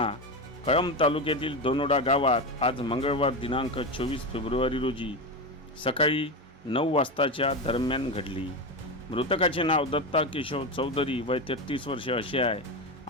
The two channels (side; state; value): both; normal; correlation 0.17